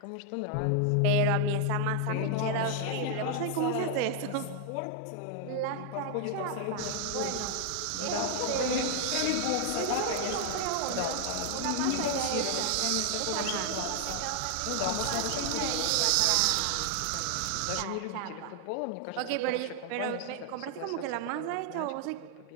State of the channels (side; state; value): both; different; correlation 0.00